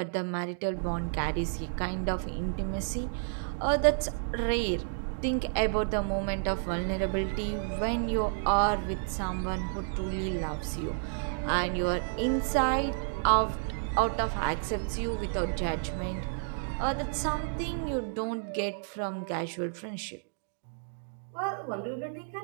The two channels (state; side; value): silent; left; digital silence